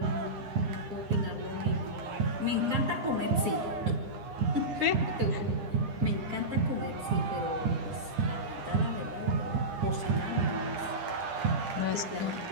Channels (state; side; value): late; left; 9.9 ms